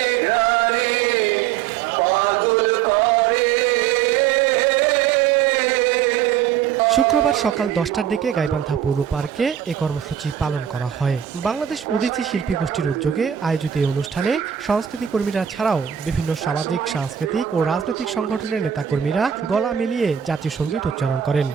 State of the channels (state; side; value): quieter; left; 9.2 dB